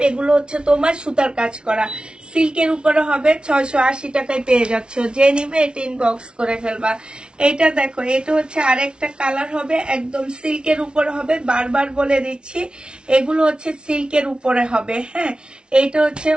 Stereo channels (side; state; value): left; late; 0.056 ms